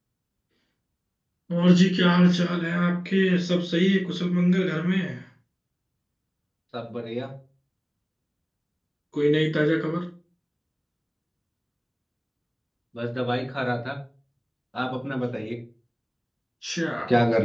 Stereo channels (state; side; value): identical; both; correlation 1.00